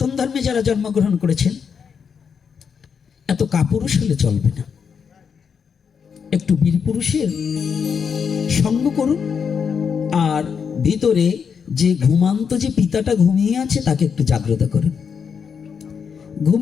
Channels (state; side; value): quieter; right; 6.6 dB